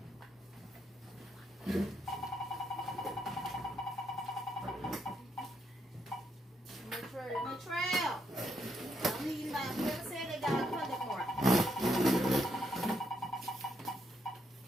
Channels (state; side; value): normal; both; correlation 0.77